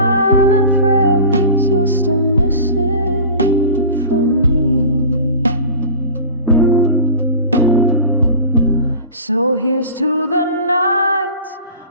prayers you're still missing from me. So here's to the nights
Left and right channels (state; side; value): inverted; both; correlation -0.36